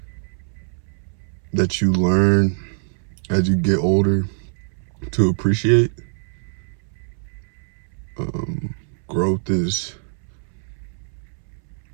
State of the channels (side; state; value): left; silent; 63 dB below the other